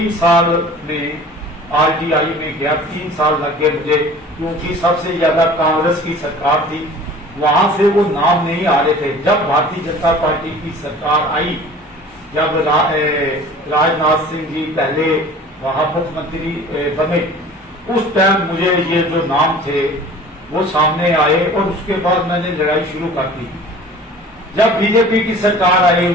साल में आरटीआई में गया, 3 साल लग गए मुझे, क्योंकि सबसे ज्यादा कांग्रेस की सरकार थी, वहां से वो नाम नहीं आ रहे थे। जब भारतीय जनता पार्टी की सरकार आई, जब राजनाथ सिंह जी पहले वहां मुख्यमंत्री बने, उस टाइम मुझे ये जो नाम थे वो सामने आए और उसके बाद मैंने लड़ाई शुरू कर दी। जब बीजेपी की सरकार आई,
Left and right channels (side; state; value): both; normal; correlation 0.44